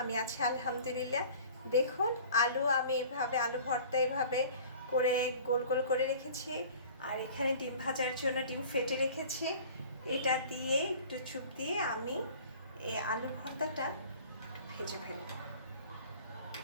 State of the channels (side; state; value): both; inverted; correlation -0.45